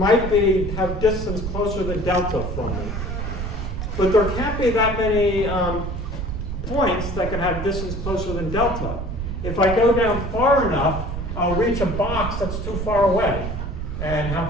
have distance closer than delta from me. but there can't be that many points that can have distance closer than delta. If I go down far enough, I'll reach a box that's too far away. And how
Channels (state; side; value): noise; right; rumble, 4 dB below the sound